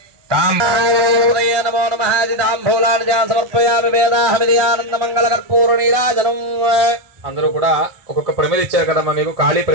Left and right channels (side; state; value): left; late; 1.4 ms